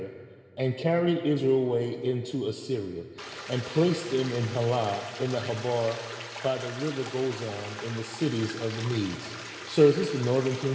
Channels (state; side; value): identical; both; correlation 1.00